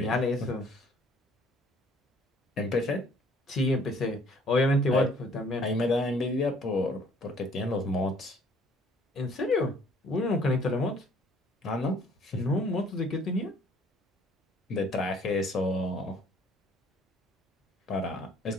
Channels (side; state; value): both; normal; correlation 0.59